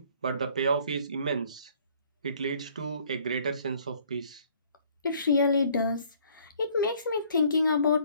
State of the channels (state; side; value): inverted; both; correlation -0.59